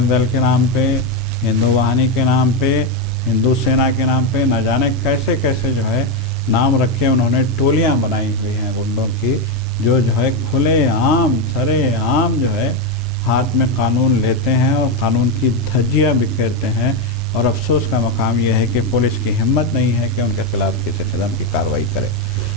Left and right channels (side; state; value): both; normal; correlation 0.06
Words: دل کے نام پہ، ہندو واہنی کے نام پہ، ہندو سینا کے نام پہ نہ جانے کیسے کیسے جو ہے نام رکھے، انہوں نے ٹولیاں بنائی ہوئی ہیں غنڈوں کی، جو ہے کھلے عام سرے عام جو ہے ہاتھ میں قانون لیتے ہیں اور قانون کی دھجیاں بکھیرتے ہیں، اور افسوس کا مقام یہ ہے کہ پولیس کی ہمت نہیں ہے کہ ان کے خلاف کسی قسم کی کارروائی کرے۔